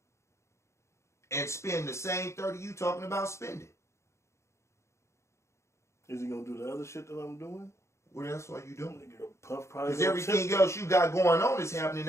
and spend the same 30 you talking about spending. Is he gonna do the other shit that I'm doing? What else are you doing? Nigga, Puff probably Because gonna everything tip. else you got going on is happening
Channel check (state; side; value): late; right; 0.14 ms